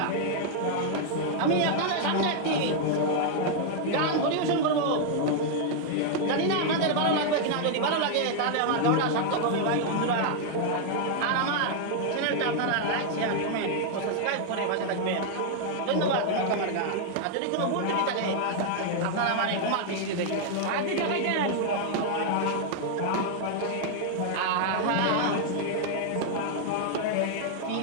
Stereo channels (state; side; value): different; both; correlation 0.00